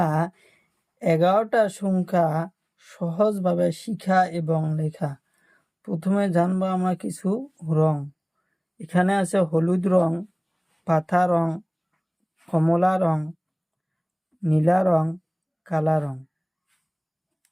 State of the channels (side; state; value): both; identical; correlation 1.00